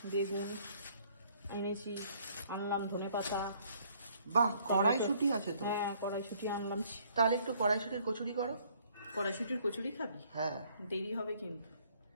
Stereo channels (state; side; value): inverted; both; correlation -0.63